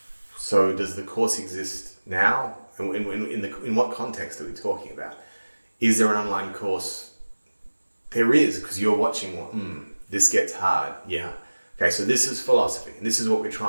So does the course exist now? And in what context are we talking about? Is there an online course? There is, because you're watching one. This gets hard. Yeah. Okay, so this is philosophy, and this is what we're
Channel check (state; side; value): inverted; both; correlation -1.00